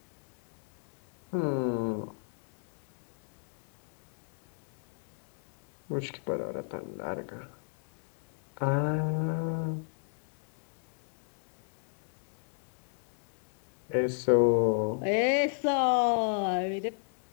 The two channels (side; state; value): right; silent; digital silence